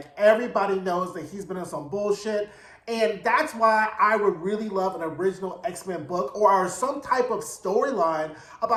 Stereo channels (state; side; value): identical; both; correlation 1.00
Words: everybody knows that he's been on some bullshit. And that's why I would really love an original X-Men book or some type of storyline